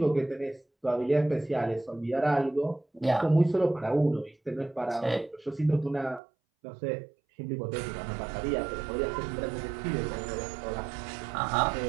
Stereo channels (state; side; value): drops out; left; at 6.2 s